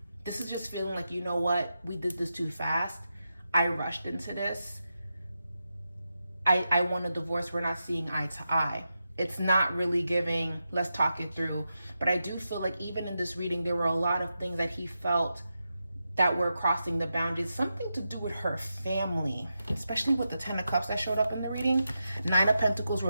This is just feeling like, you know what, we did this too fast. I rushed into this. I want a divorce. We're not seeing eye to eye. It's not really giving, let's talk it through. But I do feel like even in this reading, there were a lot of things that he felt that were crossing the boundaries. Something to do with her family, especially with the 10 of Cups that showed up in the reading. 9 of Pentacles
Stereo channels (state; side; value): inverted; both; correlation -0.88